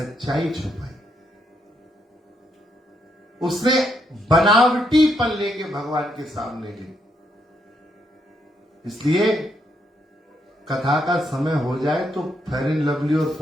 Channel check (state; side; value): normal; both; correlation 0.76